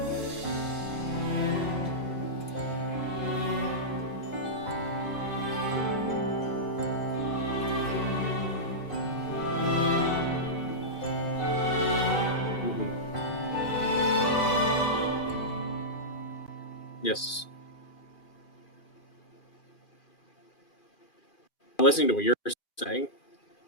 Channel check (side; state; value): right; late; 2.4 ms